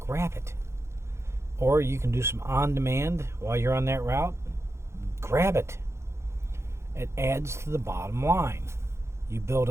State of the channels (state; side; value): late; left; 0.13 ms